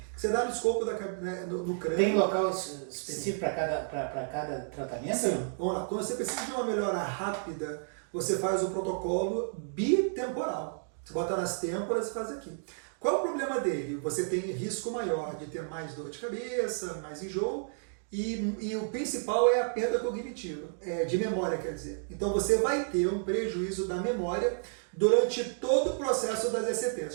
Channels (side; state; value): left; silent; digital silence